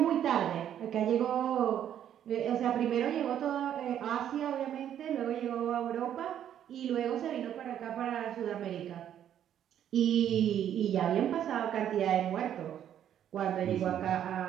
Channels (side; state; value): left; quieter; 10.2 dB